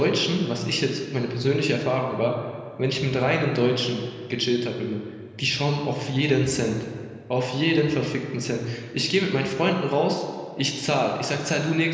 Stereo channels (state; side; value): identical; both; correlation 1.00